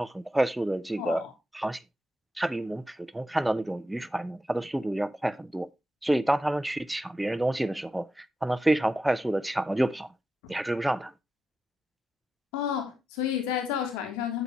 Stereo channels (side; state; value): both; normal; correlation 0.87